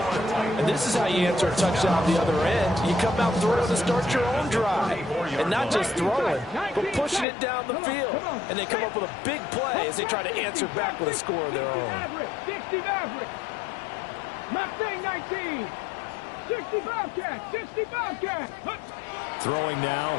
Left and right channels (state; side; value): drops out; right; at 7.2 s